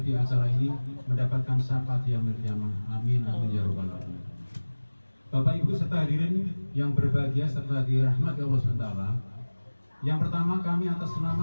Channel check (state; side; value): inverted; both; correlation -1.00